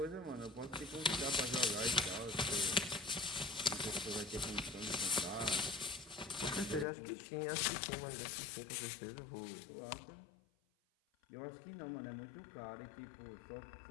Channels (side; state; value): right; drops out; at 6.9 s